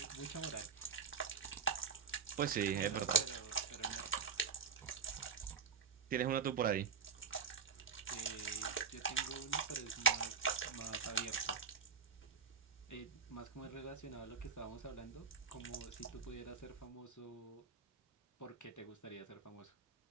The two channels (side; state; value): left; quieter; 6.0 dB